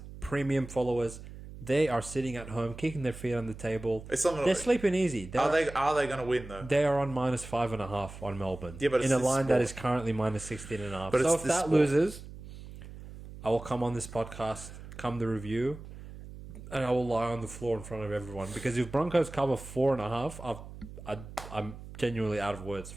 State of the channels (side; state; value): right; noise; hum, 14 dB below the sound